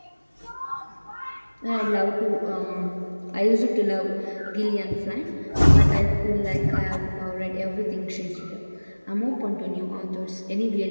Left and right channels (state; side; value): inverted; both; correlation -1.00